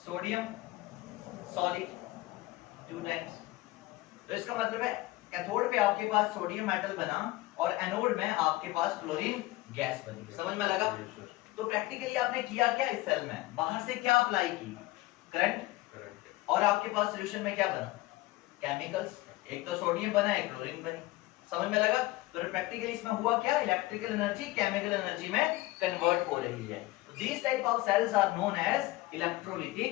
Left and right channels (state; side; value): quieter; right; 19.0 dB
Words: solid 2 times. तो इसका मतलब है कैथोड पे आपके पास सोडियम मेटल बना और एनोड में आपके पास क्लोरीन गैस बनी। समझ में लगा? तो प्रैक्टिकली आपने किया क्या इस सेल में? बाहर से क्या अप्लाई की? करंट। और आपके पास सॉल्यूशन में क्या बना? केमिकल्स। एक तो सोडियम बना, एक क्लोरीन बनी। समझ में लगा? तो प्रैक्टिकली इसमें हुआ क्या? इलेक्ट्रिकल एनर्जी केमिकल एनर्जी में कन्वर्ट हो रही है। These type of cells are known as